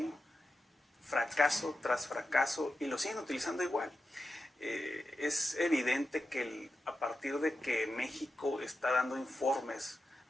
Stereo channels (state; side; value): normal; both; correlation 0.90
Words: fracaso tras fracaso, y lo siguen utilizando igual. Es evidente que a partir de que México está dando informes